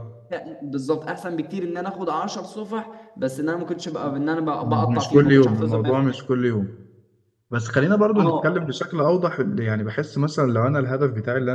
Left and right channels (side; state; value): both; identical; correlation 1.00